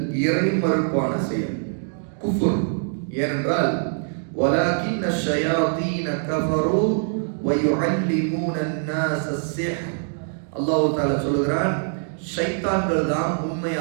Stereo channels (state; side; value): silent; left; digital silence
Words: இறை மறுப்பான செயல், குஃபுர். ஏனென்றால் வலாகின் ஷயாதீன கஃபரு வ யுஅல்லிமூன அன்-நாஸ அஸ்-சிஹ். அல்லாஹ் தஆலா சொல்கிறான், ஷைத்தான்கள் தான்